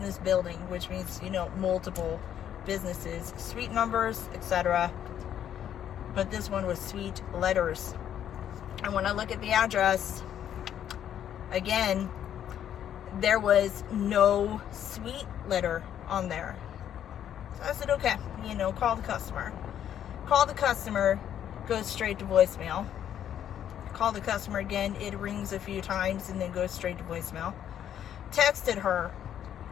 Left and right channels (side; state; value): right; quieter; 10.0 dB